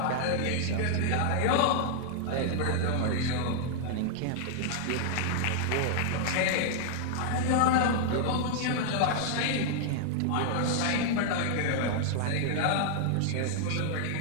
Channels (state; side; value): different; both; correlation -0.01